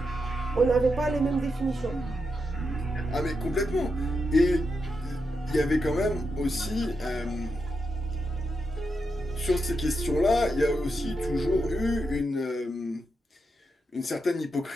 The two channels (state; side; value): normal; both; correlation 0.86